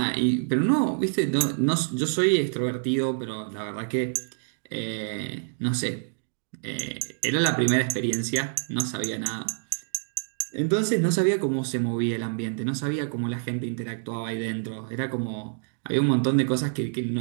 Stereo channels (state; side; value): silent; left; digital silence